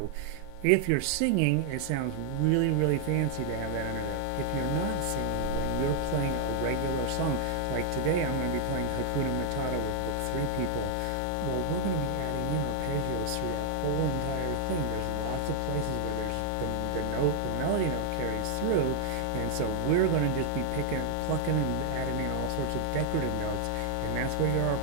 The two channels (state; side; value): different; both; correlation 0.00